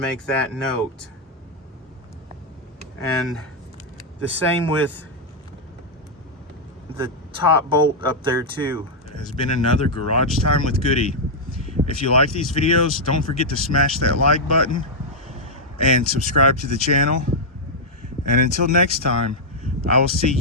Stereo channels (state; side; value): normal; both; correlation -0.05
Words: that note. And the same with the top bolt up there too. It has been another Garage Time with Goody. If you like these videos, don't forget to smash that like button and subscribe to the channel. And until next time, I will see